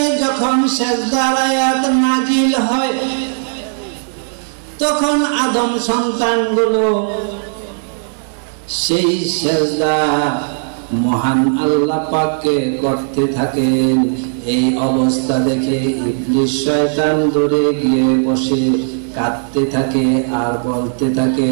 যখন সিজদার আয়াত নাজিল হয় তখন আদম সন্তানগুলো সেই সিজদা মহান আল্লাহ পাককে করতে থাকেন। এই অবস্থা দেখে ইবলিস শয়তান দূরে গিয়ে বসে কাঁদতে থাকে আর বলতে থাকে,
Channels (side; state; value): left; silent; digital silence